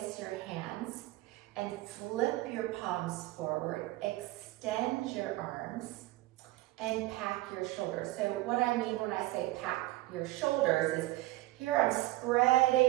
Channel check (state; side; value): quieter; left; 18.5 dB